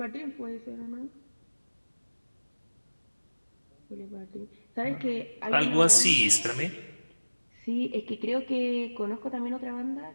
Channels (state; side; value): inverted; both; correlation -1.00